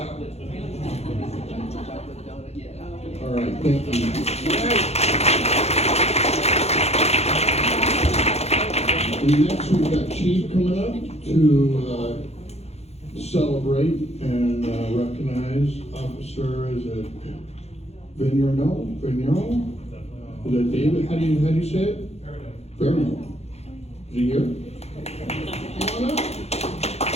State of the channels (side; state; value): right; late; 0.31 ms